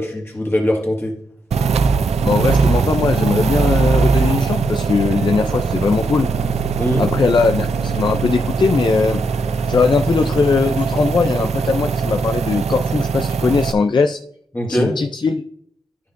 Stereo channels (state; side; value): normal; both; correlation 0.79